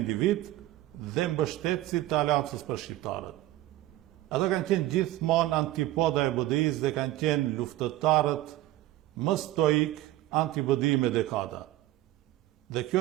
dhe mbështetësit të Aleancës për Shqiptarët. Ata kanë qenë gjithmonë antipoda e BDI-s dhe kanë qenë luftëtarët më stoik anti-BDI me dekada. Dhe kjo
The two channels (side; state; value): left; quieter; 15.4 dB